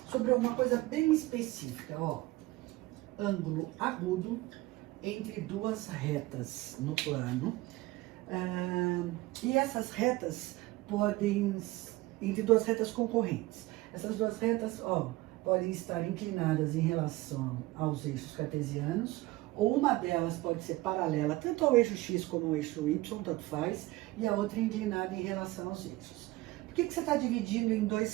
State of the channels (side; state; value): left; quieter; 19.2 dB